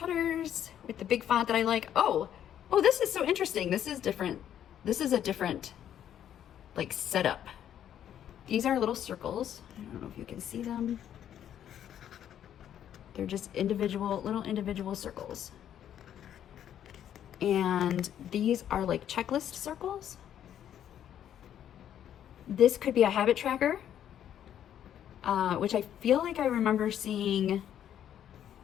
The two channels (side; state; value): right; quieter; 10.2 dB